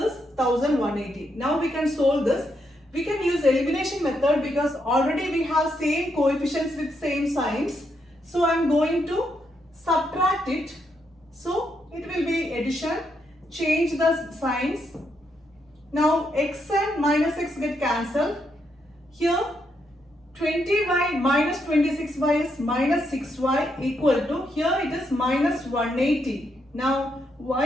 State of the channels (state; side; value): normal; both; correlation 0.79